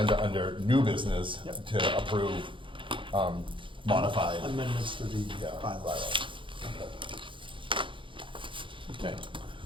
under new business Yep. to approve modified. Amendments to the Yeah, bylaws. Okay,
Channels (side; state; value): left; late; 0.25 ms